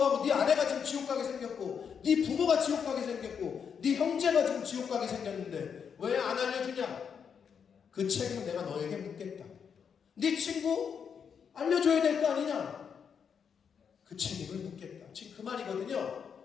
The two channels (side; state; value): right; quieter; 7.0 dB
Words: 네 아내가 지금 지옥 가게 생겼고 네 부모가 지옥 가게 생겼고 네 형제가 지금 지옥 가게 생겼는데 왜 안 알려주냐? 그 책임은 내가 너에게 묻겠다. 네 친구 알려줘야 될 거 아니냐? 그 책임을 묻겠다. 지금 그